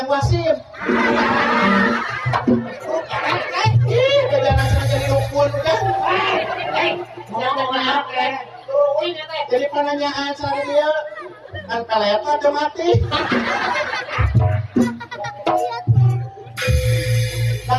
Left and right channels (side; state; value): both; identical; correlation 1.00